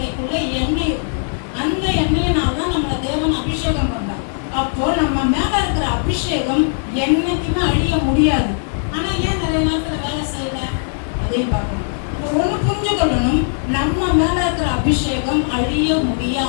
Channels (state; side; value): silent; right; digital silence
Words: எண்ணெய், அந்த எண்ணெயினால்தான் நம்மளை தேவன் அபிஷேகம் பண்றார். அப்போ நம்ம மேல இருக்கிற அபிஷேகம் என்னைக்குமே அழிய முடியாது. ஆனா ஏன் நிறைய நேரத்துல வேலை செய்யல? அதையும் பார்க்கணும். ஒண்ணு புரிஞ்சு கொள்ளணும், நம்ம மேல இருக்கிற அபிஷேகம் அழிய